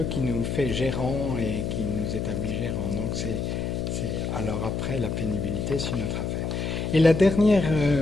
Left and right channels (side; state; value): left; noise; hum, 2 dB below the sound